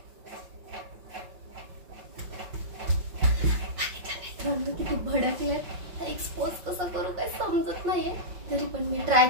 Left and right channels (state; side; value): late; left; 5.5 ms